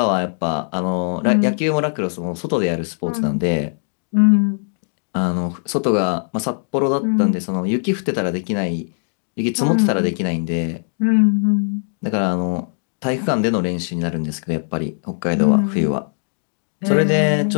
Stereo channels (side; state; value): right; silent; digital silence